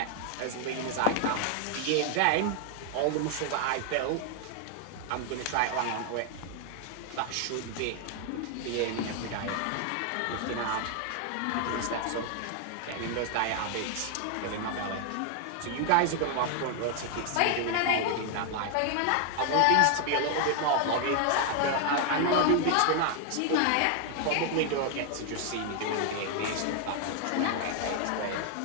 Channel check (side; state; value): both; different; correlation 0.00